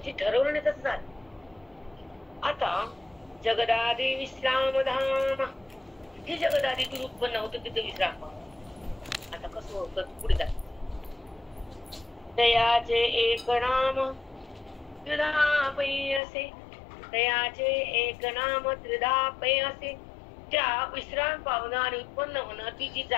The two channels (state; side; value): drops out; right; at 16.2 s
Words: ठरवलं नाही तसं झालं. आता जगदादि विश्राम धाम, हे जगदादीतून उत्पन्न होतं, तिथे विश्राम पावतो. आता कसं होतं पुढे जात. तयाचे एक नाम त्रिधा पै असे, तयाचे एक नाम त्रिधा पै असे. त्या विश्राम पावणं आणि उत्पन्न होणं, ती जी